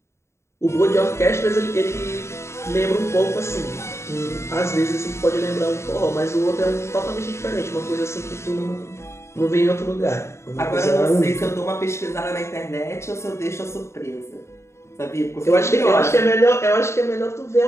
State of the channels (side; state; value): right; late; 0.13 ms